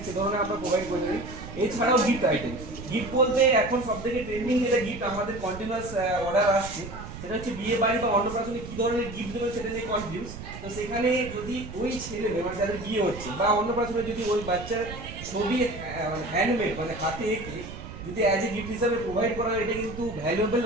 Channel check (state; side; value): noise; right; rumble, 11 dB below the sound